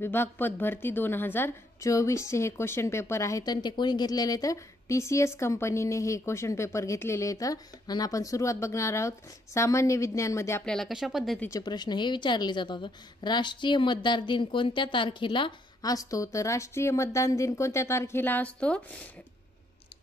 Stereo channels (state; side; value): normal; both; correlation 0.72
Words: पदभरती 2024 चे हे क्वेश्चन पेपर आहेत आणि ते कोणी घेतलेले आहेत? TCS कंपनीने हे क्वेश्चन पेपर घेतलेले आहेत. आणि आपण सुरुवात बघणार आहोत. सामान्य विज्ञानमध्ये आपल्याला कशा पद्धतीचे प्रश्न हे विचारले जातात. राष्ट्रीय मतदार दिन कोणत्या तारखेला असतो? तर राष्ट्रीय मतदान दिन कोणत्या तारखेला असतो?